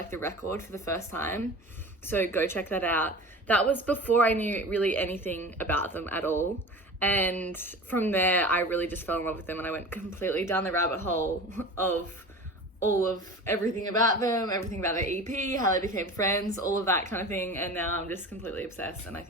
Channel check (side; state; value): both; normal; correlation 0.35